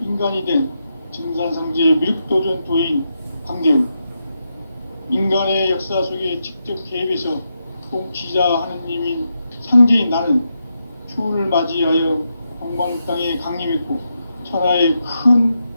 된 증산상제 미륵도전 도인 광대우, 인간의 역사 속에 직접 개입해서 통치자 하느님인 상제인 나는 추운을 맞이하여 동방 땅에 강림했고 천하의 큰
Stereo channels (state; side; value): inverted; both; correlation -0.84